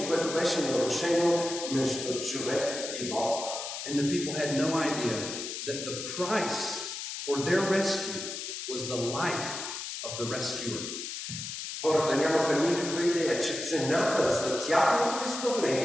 което беше нарушено между човек и Бог. And the people had no idea that the price for their rescue was the life of the rescuer. Хората нямаха никаква идея, че цената за тяхното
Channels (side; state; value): left; noise; hiss, 6 dB below the sound